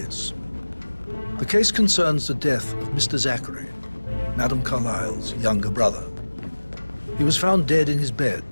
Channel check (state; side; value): inverted; both; correlation -1.00